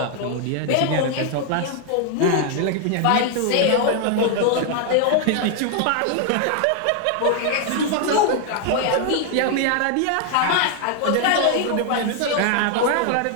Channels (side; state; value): both; different; correlation 0.00